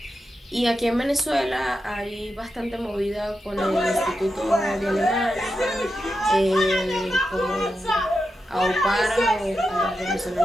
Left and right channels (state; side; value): normal; both; correlation 0.88